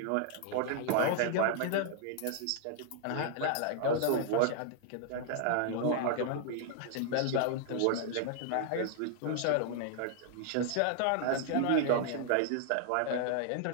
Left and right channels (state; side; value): different; both; correlation 0.00